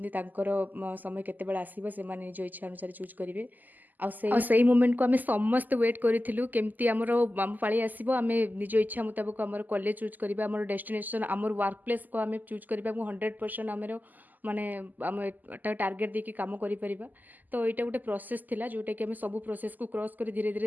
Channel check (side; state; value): left; late; 0.084 ms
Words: ତାଙ୍କର ସମୟ କେତେବେଳେ ଆସିବ ସେମାନେ ନିଜ ଇଚ୍ଛା ଅନୁସାରେ ଚୁଜ୍ କରିବେ। ଆଉ ସେଇ ମୋମେଣ୍ଟକୁ ଆମେ ସମସ୍ତେ ୱେଟ୍ କରିଥିଲୁ କେମିତି ଆମର ଆମ ପାଳି ଆସିବ, ଆମେ ନିଜ ଇଚ୍ଛା ମୁତାବକ ଆମର କଲେଜ ଚୁଜ୍ କରିବା, ଆମର ଡେଷ୍ଟିନେସନ୍ ଆମର ୱାର୍କ ପ୍ଲେସ୍କୁ ଆମେ ଚୁଜ୍ କରିବା ଏବଂ 100% ଆମର ମାନେ ଆମେ ଏଟା ଟାର୍ଗେଟ୍ ଦେଇକି କାମ କରିପାରିବା। ତ ଏଇଟା ଗୋଟେ ପ୍ରୋସେସ୍ ଥିଲା ଯେଉଁଟାକି ଆମେ ସବୁ ପ୍ରୋସେସ୍କୁ କ୍ରସ୍ କରି ଧୀରେ